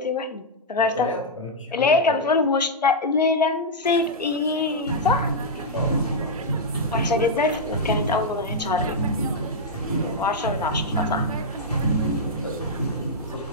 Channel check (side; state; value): both; normal; correlation -0.06